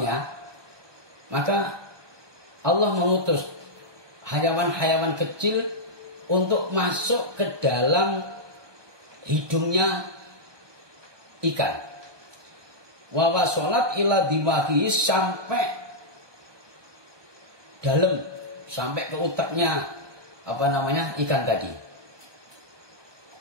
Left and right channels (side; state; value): left; late; 1.2 ms